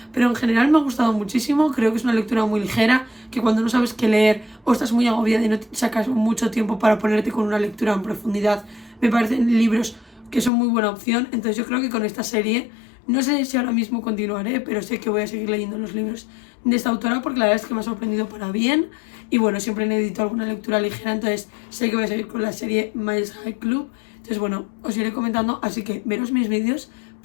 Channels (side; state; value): right; drops out; at 10.5 s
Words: pero en general me ha gustado muchísimo, creo que es una lectura muy ligera, que cuando no sabes qué leer o estás muy agobiada y no sacas mucho tiempo para ponerte con una lectura en profundidad, me parecen libros que son muy buena opción, entonces yo creo que con esta serie, no sé si ahora mismo continuaré, pero sé que voy a seguir leyendo los libros de esta autora porque la verdad es que me ha sorprendido para bien. Y bueno, siempre necesito alguna lectura ligera, entonces sé que voy a seguir con la serie Miles High Club. Entonces bueno, os iré comentando, así que veros mis vídeos